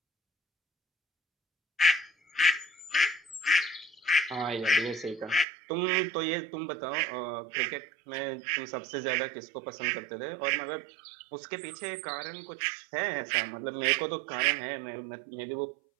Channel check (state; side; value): drops out; left; at 5.5 s